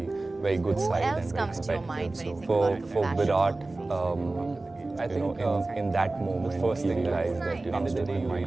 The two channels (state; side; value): quieter; left; 3.1 dB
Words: very good Who side. else and comes to your mind when you think about for compassion Virat, on the field? I think in that moment, first thing realized that after the day, my